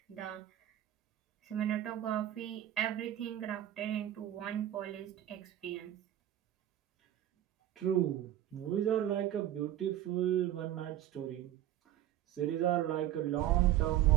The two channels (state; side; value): quieter; left; 12.3 dB